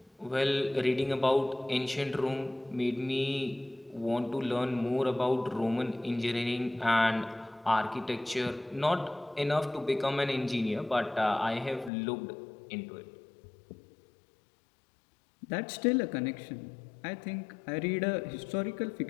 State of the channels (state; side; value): drops out; right; at 11.9 s